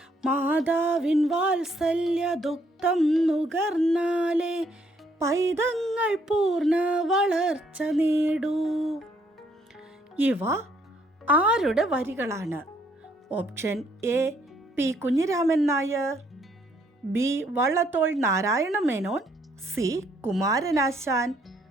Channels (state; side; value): normal; both; correlation 0.69